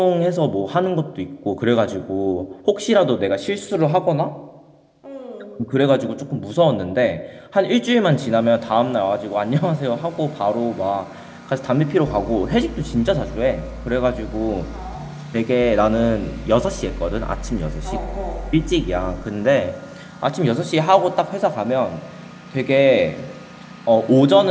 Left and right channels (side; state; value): both; identical; correlation 1.00